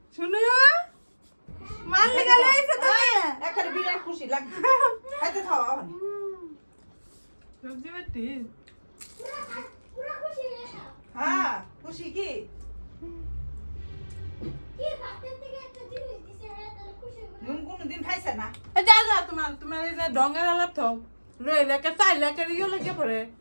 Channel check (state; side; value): inverted; both; correlation -1.00